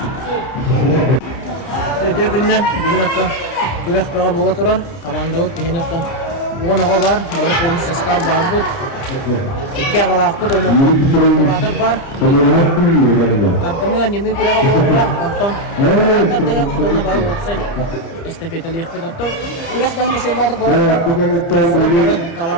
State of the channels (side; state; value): right; late; 30 ms